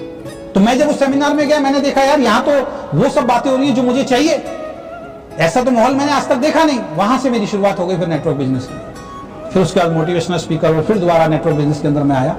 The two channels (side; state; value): both; identical; correlation 1.00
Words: तो मैं जब उस सेमिनार में गया, मैंने देखा यार यहाँ तो वो सब बातें हो रही है जो मुझे चाहिए। ऐसा तो माहौल मैंने आज तक देखा नहीं। वहां से मेरी शुरुआत हो गई फिर नेटवर्क बिजनेस की। फिर उसके बाद मोटिवेशनल स्पीकर और फिर दोबारा नेटवर्क बिजनेस के अंदर मैं आया।